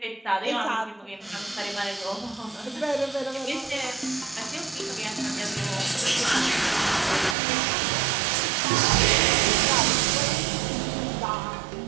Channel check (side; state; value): left; drops out; at 7.4 s